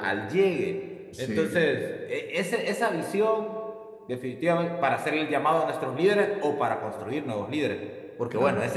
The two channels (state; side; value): identical; both; correlation 1.00